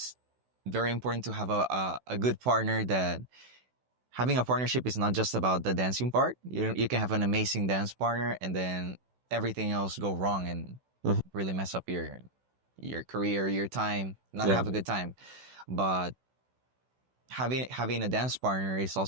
very important to have a good partner. That having a partnership is not just about the dancing part. You can have an amazing dance partner and then everything else go wrong and really mess up your career, your time, not have a good time. But having a dance partner is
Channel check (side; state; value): left; late; 16 ms